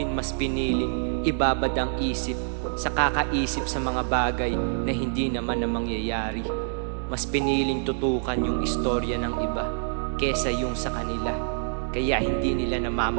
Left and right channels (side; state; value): left; silent; digital silence